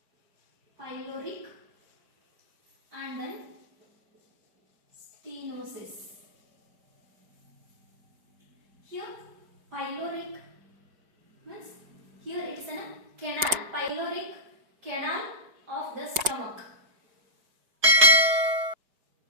Pyloric and then stenosis. Here pyloric means here it is a canal, pyloric canal of the stomach.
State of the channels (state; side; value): late; left; 4.7 ms